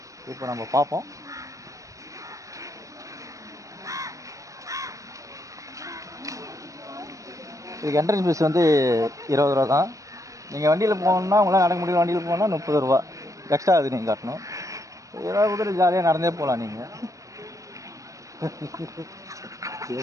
இப்போ நம்ம பார்ப்போம். இதுக்கு என்ட்ரன்ஸ் ஃபீஸ் வந்து 20 ரூபா தான். நீங்கள் வண்டியில் போகணுன்னா உங்களால் நடக்க முடியல, வண்டியில் போகணுன்னா 30 ரூபா எக்ஸ்ட்ரா அது நீங்கள் காட்டணும். ஏதாவது கூட ஜாலியாக நடந்தே போகலாம். நீங்கள்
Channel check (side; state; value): left; late; 0.16 ms